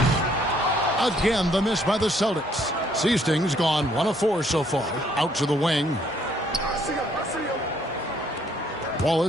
Again, the miss by the Celtics. Seasting's gone 1 of 4 so far. Out to the wing.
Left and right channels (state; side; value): normal; both; correlation 0.66